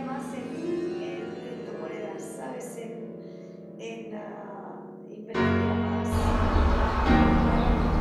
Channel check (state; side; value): identical; both; correlation 1.00